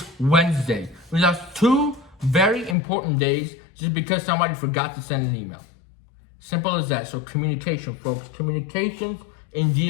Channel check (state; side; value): drops out; right; at 2.8 s